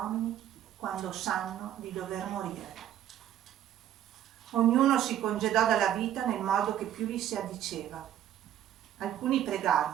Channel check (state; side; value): quieter; left; 11.2 dB